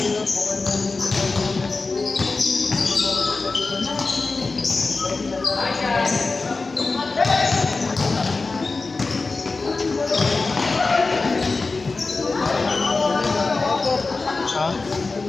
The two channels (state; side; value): quieter; right; 3.8 dB